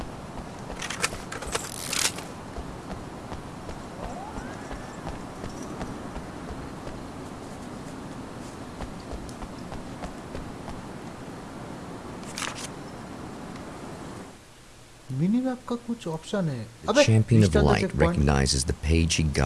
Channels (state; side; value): identical; both; correlation 1.00